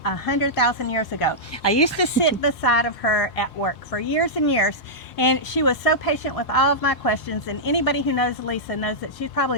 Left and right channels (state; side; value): normal; both; correlation -0.11